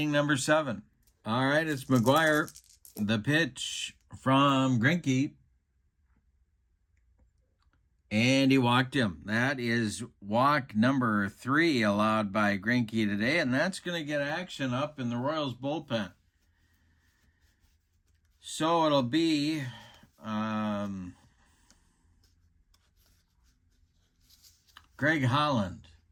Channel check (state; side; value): identical; both; correlation 1.00